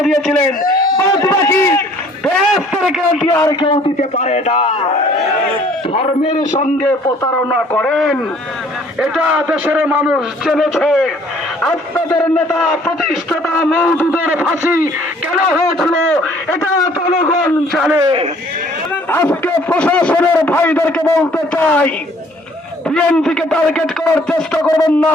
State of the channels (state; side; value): normal; both; correlation 0.57